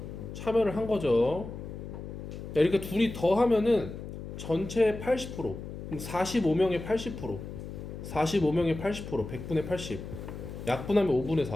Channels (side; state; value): left; noise; hum, 9 dB below the sound